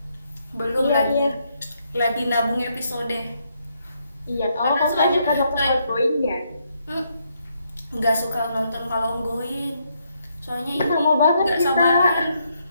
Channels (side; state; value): both; inverted; correlation -0.76